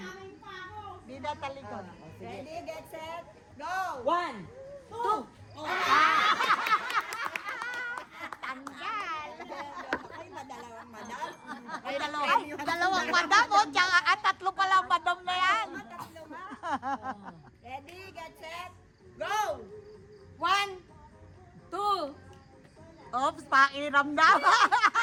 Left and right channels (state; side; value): identical; both; correlation 1.00